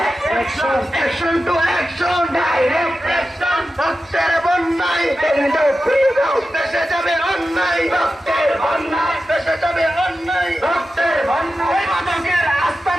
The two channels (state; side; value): normal; both; correlation 0.92